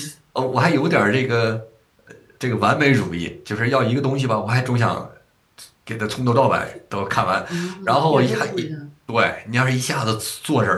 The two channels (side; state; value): both; identical; correlation 1.00